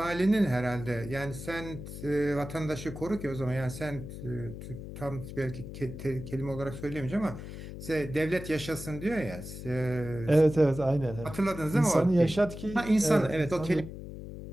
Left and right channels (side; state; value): left; noise; hum, 10 dB below the sound